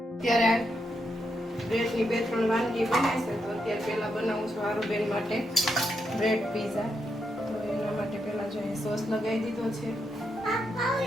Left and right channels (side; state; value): both; normal; correlation 0.82